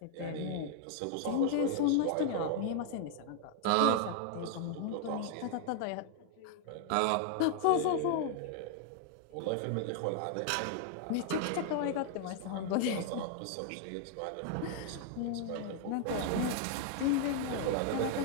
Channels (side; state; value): both; different; correlation 0.00